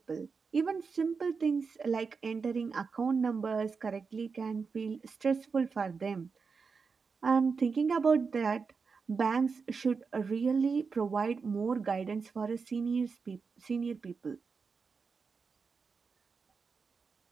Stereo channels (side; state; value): left; quieter; 5.1 dB